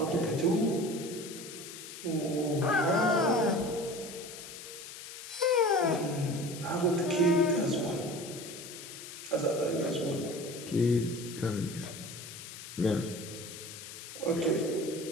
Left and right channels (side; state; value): left; noise; hiss, 12 dB below the sound